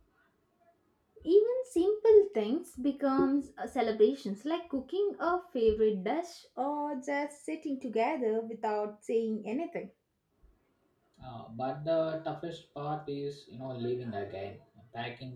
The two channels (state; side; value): identical; both; correlation 1.00